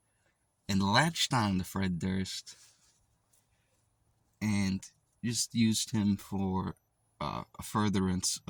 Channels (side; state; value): both; identical; correlation 1.00